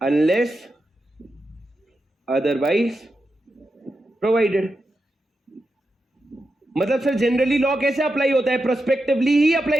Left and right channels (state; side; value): normal; both; correlation 0.88